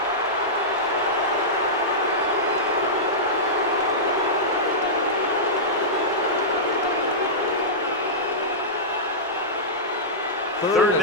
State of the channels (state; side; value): normal; both; correlation -0.14